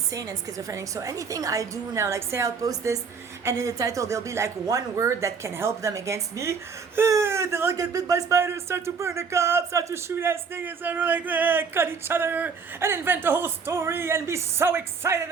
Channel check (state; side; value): quieter; left; 5.6 dB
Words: and schizophrenic. So anything I do now, like say I'll post this and in the title there'll be like one word that can help them against me. They'll all get bit by spiders, start to burn the cops, start to shoot at niggas, and like cut each other and invent a whole story and be so excited